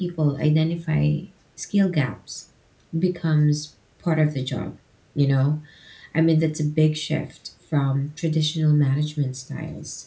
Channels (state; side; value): identical; both; correlation 1.00